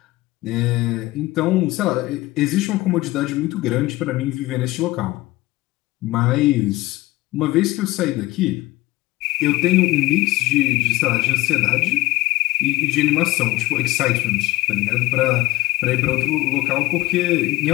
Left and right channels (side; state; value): right; quieter; 18.8 dB